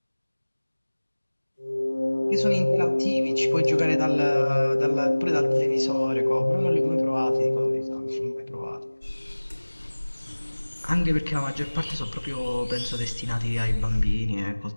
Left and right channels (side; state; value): both; inverted; correlation -1.00